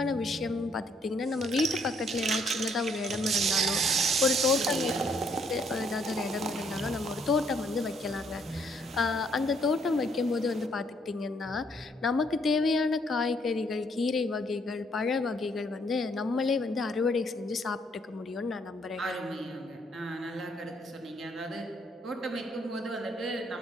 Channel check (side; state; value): both; normal; correlation 0.69